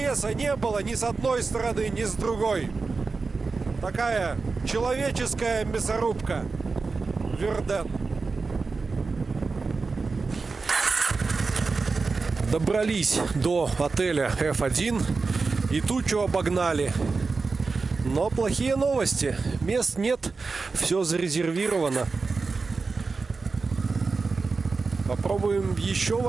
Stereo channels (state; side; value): quieter; left; 4.2 dB